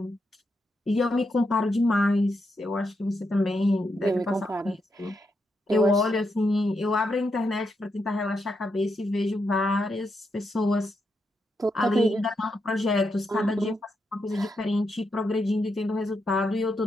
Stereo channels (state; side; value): normal; both; correlation 0.83